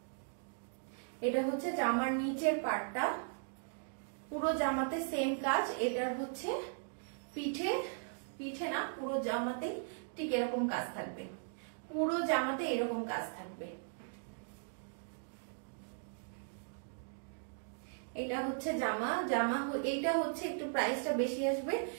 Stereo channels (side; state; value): left; silent; digital silence